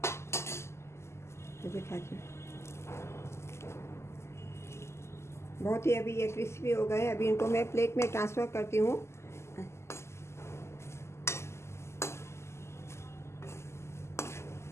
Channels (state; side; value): late; right; 0.13 ms